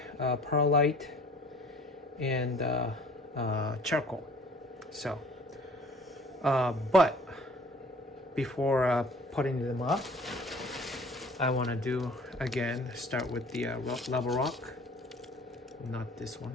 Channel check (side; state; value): both; normal; correlation 0.51